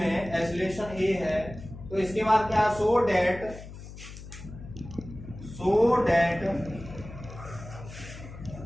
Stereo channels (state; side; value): noise; left; hum, 14 dB below the sound